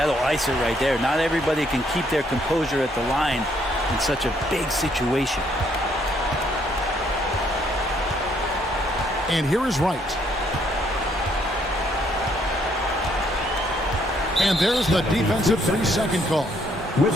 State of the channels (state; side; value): normal; both; correlation 0.69